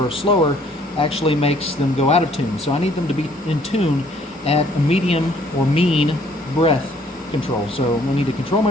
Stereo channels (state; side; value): normal; both; correlation 0.61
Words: slower actually makes them go out of tune. So I need them to be in tune at a medium or mean breath control. So I need to control